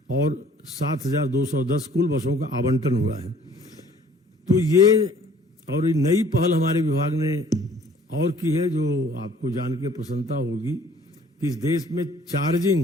और 7,210 कुल बसों का आवंटन हुआ है। तो ये और नई पहल हमारे विभाग ने और की है, जो आपको जान के प्रसन्नता होगी कि इस देश में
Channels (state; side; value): normal; both; correlation 0.55